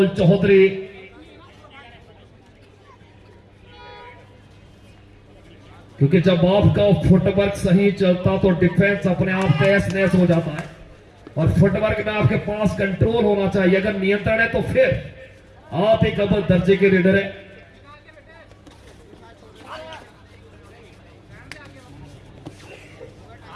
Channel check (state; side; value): identical; both; correlation 1.00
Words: चौधरी। क्योंकि जब आपका फुटवर्क सही चलता तो डिफेंस अपने आप तहस नहस हो जाता है, और फुटवर्क में आपके पास कंट्रोल होना चाहिए। अगर नियंत्रण है तो फिर आप एक अव्वल दर्जे के रीडर है।